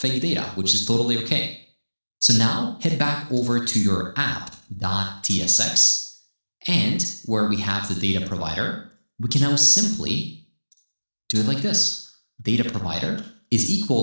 data, which is totally okay. So now head back over to your app.tsx, and where we have the data provider, we can now simply do it like this. Data provider is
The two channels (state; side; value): inverted; both; correlation -1.00